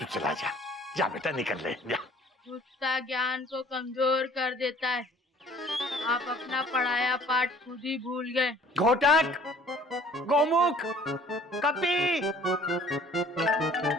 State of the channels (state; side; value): normal; both; correlation 0.53